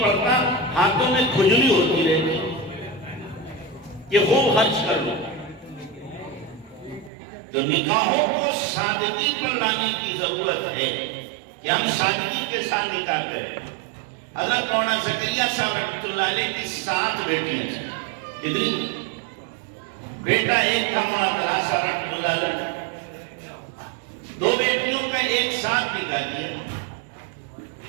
پڑتا، ہاتھوں میں کھجلی ہوتی رہتی کہ خوب خرچ کر لو۔ تو نکاحوں کو سادگی پر لانے کی ضرورت ہے کہ ہم سادگی کے ساتھ نکاح کریں۔ حضرت مولانا زکریا صاحب رحمۃ اللہ علیہ کی 7 بیٹیاں تھیں، کتنی؟ بیٹا ایک تھا مولانا طلحہ صاحب رحمۃ اللہ علیہ، 2 بیٹیوں کا ایک ساتھ نکاح کیا،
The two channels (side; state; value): left; drops out; at 7.1 s